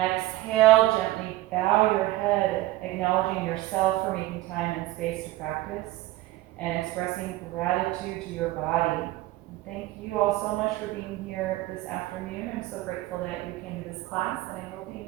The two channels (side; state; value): left; quieter; 17.2 dB